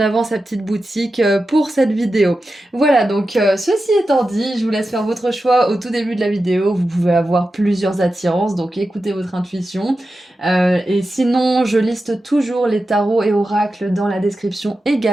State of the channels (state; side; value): normal; both; correlation 0.92